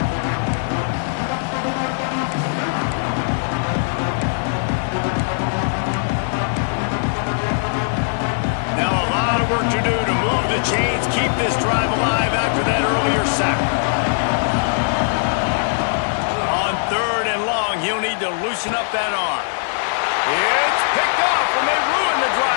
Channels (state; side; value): silent; right; digital silence